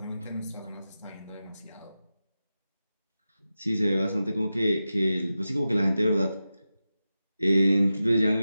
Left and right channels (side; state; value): both; inverted; correlation -0.92